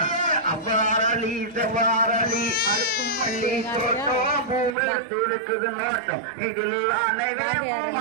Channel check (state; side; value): drops out; left; at 4.8 s